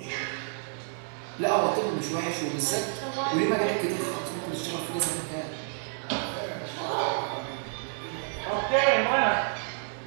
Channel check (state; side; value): silent; left; 58 dB below the other